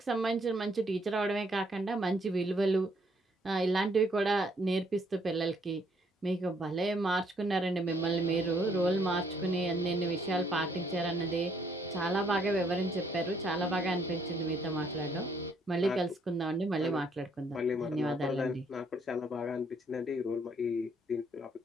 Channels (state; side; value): normal; both; correlation 0.68